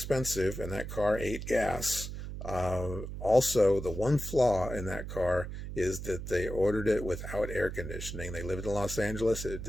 and that car ate gas. Also, the one flaw in that car is that they ordered it without air conditioning. They lived in Los Angeles. It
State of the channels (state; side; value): noise; right; hum, 7 dB below the sound